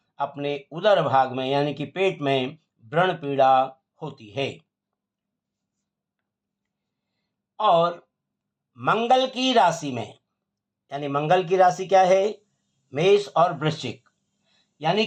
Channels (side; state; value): both; identical; correlation 1.00